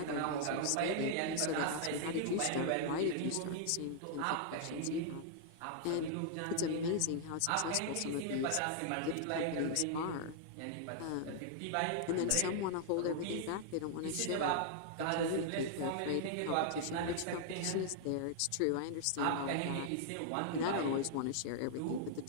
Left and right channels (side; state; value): both; different; correlation -0.01